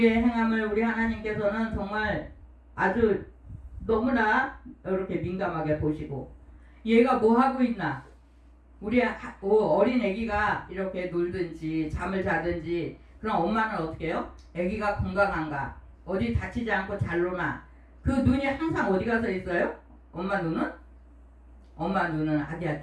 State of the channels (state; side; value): identical; both; correlation 1.00